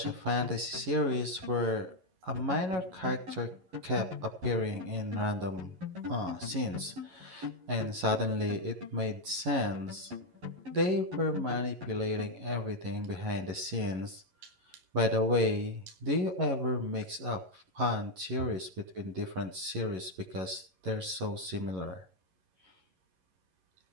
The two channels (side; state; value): left; late; 11 ms